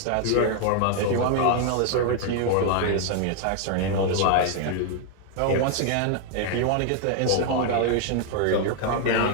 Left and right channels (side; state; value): both; different; correlation 0.00